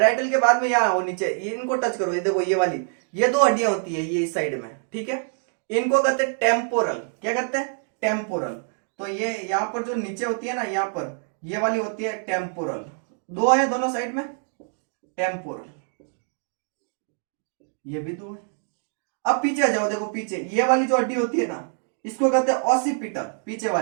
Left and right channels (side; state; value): left; silent; 62 dB below the other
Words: के बाद में यहां आओ नीचे, ये इनको टच करो, ये देखो ये वाली, ये 2 हड्डियां होती है ये इस साइड में, ठीक है। इनको कहते हैं टेम्पोरल। क्या कहते हैं? टेम्पोरल। तो ये यहां पर जो नीचे होती है ना, यहां पर ये वाली होती है टेम्पोरल। 2 है दोनों साइड में, टेम्पोरल। ये भी 2 है। अब पीछे आ जाओ, देखो पीछे ये वाली जो हड्डी होती है ना, इसको कहते हैं ऑसिपिटल। पीछे